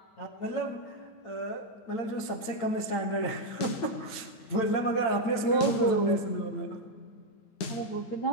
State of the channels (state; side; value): late; right; 8.9 ms